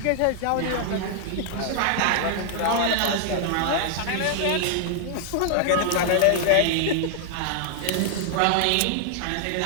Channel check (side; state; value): both; different; correlation 0.00